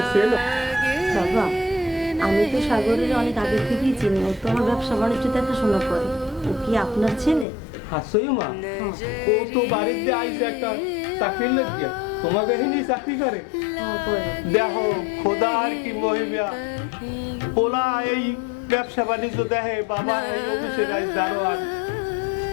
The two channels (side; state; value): right; drops out; at 7.5 s